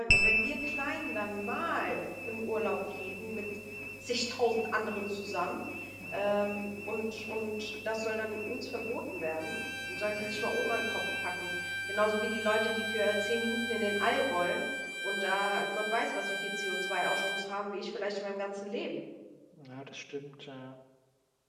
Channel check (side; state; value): both; identical; correlation 1.00